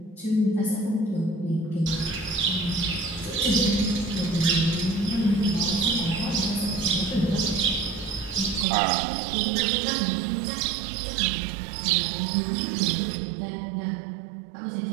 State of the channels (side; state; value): left; drops out; at 8.7 s